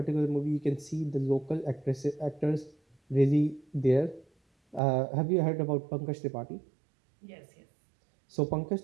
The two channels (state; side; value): drops out; left; at 4.8 s